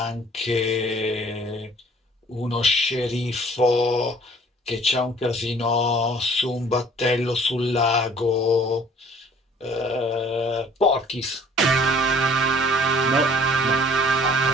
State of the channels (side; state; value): both; normal; correlation 0.54